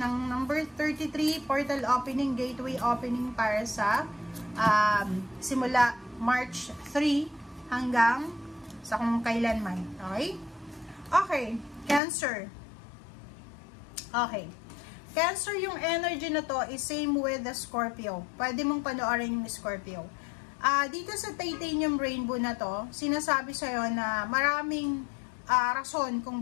number 33, portal opening, gateway opening para sa simula March 3 hanggang sa kung kailanman. Okay? Okay. Cancer. Okay. Cancer, yung energy na to is same with the Scorpio. Pwede mong panoorin yung Scorpio. Dito sa titanium rainbow na to, sinasabi sa'yo na maraming rason kung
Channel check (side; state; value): right; drops out; at 12.0 s